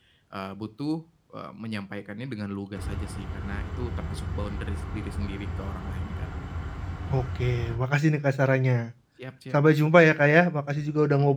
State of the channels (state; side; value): identical; both; correlation 1.00